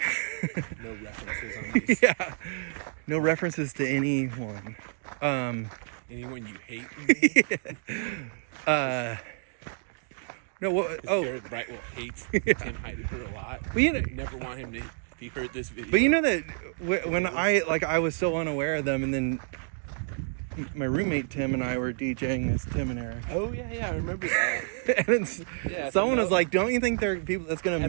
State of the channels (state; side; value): silent; left; digital silence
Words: No references on these. Yeah. No references to anyone. Anyone you hate? No, what? Oh. Garrett Brightwell hates Tim Heidecker a lot. Well, you know, never want him to, if he heard this video. but you know that when I was so unaware of them, and then my roommate Tim and I were DJing this Tim and Eric. Oh yeah, I remember that. And someone was like, "Don't you think there are people that's